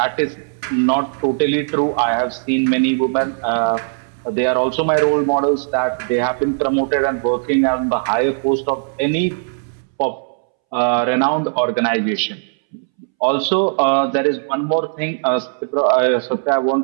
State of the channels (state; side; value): silent; left; 66 dB below the other